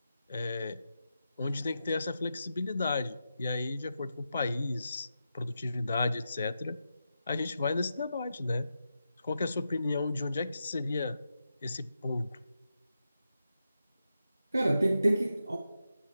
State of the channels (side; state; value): both; inverted; correlation -0.88